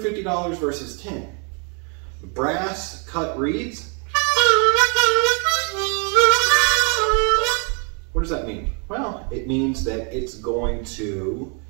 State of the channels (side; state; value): left; quieter; 37.1 dB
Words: versus $10? Brass cut reeds? What does that mean? Well, it means that it's going to